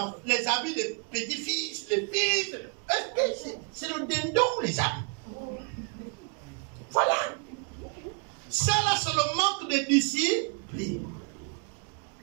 habits des petits-fils, les fils. Est-ce que c'est le dindon ou les habits? Voilà. Ça là, c'est le manque de discipline.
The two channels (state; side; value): quieter; left; 35.8 dB